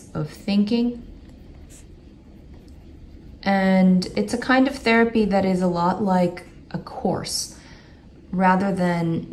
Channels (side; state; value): both; identical; correlation 1.00